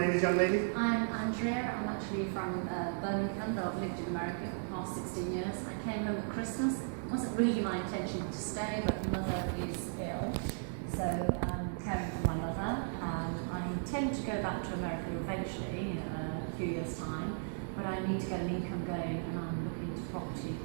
is, young lady? I'm Andrea. I'm actually from Birmingham, but I've lived in America for the past 16 years. I came home at Christmas. It wasn't really my intention to stay, but my mother is ill, so I'm caring for my mother. I intend to go back to America eventually, in a few years' time, but I need to get an income going, and I'm looking to property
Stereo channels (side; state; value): left; silent; 54 dB below the other